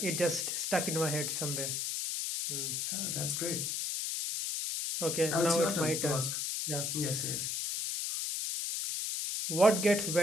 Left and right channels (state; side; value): noise; left; hiss, 1 dB below the sound